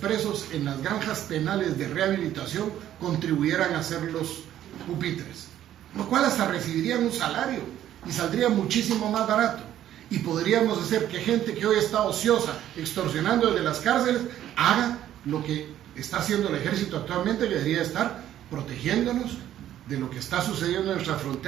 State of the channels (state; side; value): quieter; left; 11.8 dB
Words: en las granjas penales de rehabilitación contribuyeran a hacer los pupitres, lo cual hasta recibirían un salario y saldría muchísimo más barato. Y podríamos hacer que gente que hoy está ociosa, extorsionando desde las cárceles, haga lo que está haciendo el ejército actualmente, que debería estar protegiéndonos de lo que está sucediendo en nuestras